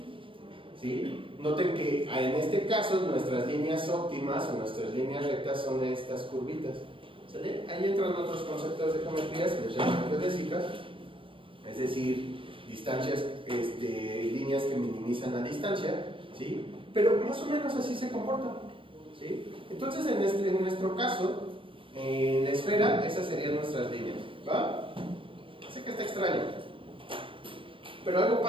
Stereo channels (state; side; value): late; left; 0.25 ms